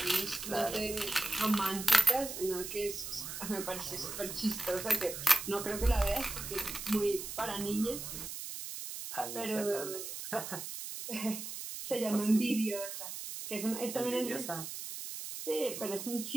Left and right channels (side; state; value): right; noise; hiss, 7 dB below the sound